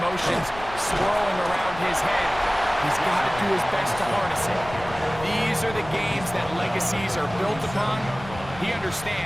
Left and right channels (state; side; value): noise; left; rumble, 15 dB below the sound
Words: emotions swirling around his head, he's got to do his best to harness it. These are the games that legacies are built upon. He